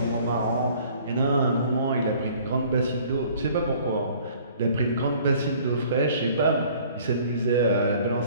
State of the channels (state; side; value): inverted; both; correlation -0.54